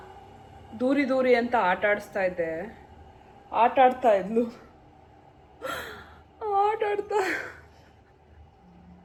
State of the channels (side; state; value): both; identical; correlation 1.00